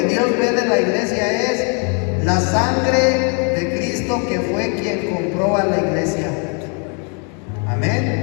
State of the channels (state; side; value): quieter; right; 38.0 dB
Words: Dios ve de la iglesia es la sangre de Cristo que fue quien compró a la iglesia. Amén.